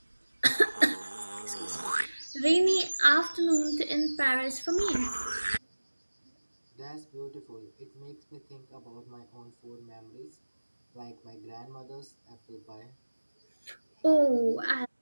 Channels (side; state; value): both; inverted; correlation -1.00